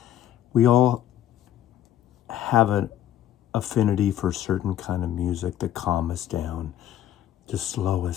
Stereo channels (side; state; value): right; quieter; 11.7 dB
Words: We all have an affinity for certain kind of music to calm us down, to slow